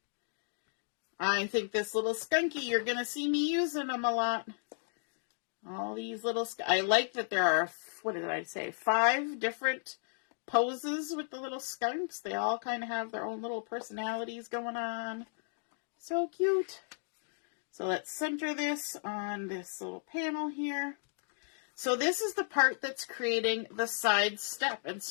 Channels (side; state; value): right; silent; digital silence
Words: I think this little skunky, you're going to see me using them a lot. All these little, I like that there are, what did I say, 5 different poses with the little skunks. They all kind of have their own little personalities going on. So cute. So let's center this on this little panel here. So this is the part that's creating the side step. And